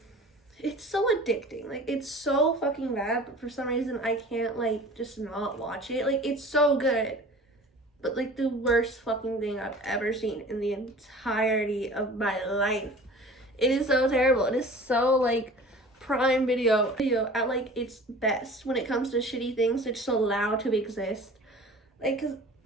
it's so addicting. It's so fucking bad, but for some reason I can't just not watch it. It's so good, but the worst fucking thing I've ever seen in the entirety of my life. It is so terrible. It is so Prime Video at its best when it comes to shitty things that's just allowed to exist. Cause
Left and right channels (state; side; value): normal; both; correlation 0.43